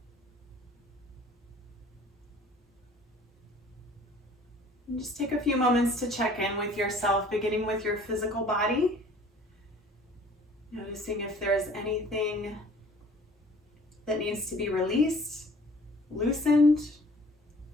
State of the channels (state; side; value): normal; both; correlation 0.52